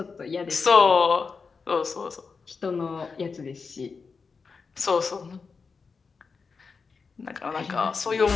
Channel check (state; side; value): quieter; right; 5.0 dB